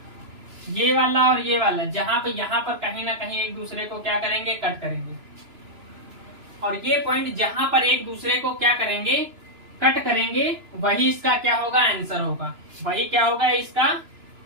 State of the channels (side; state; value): left; late; 3.0 ms